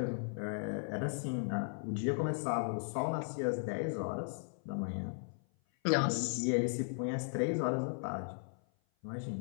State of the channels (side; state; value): right; silent; 53 dB below the other